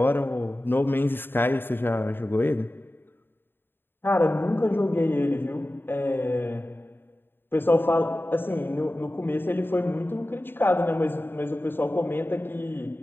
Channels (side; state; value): right; late; 0.10 ms